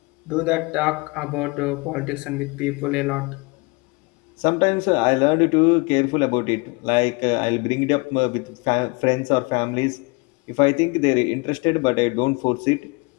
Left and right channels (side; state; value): right; quieter; 28.1 dB